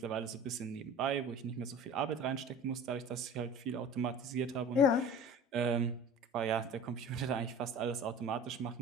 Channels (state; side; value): normal; both; correlation 0.40